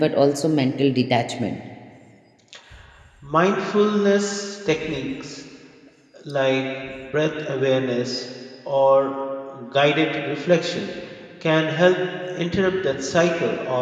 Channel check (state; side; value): identical; both; correlation 1.00